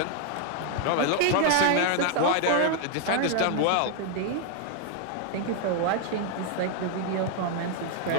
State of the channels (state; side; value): different; both; correlation 0.00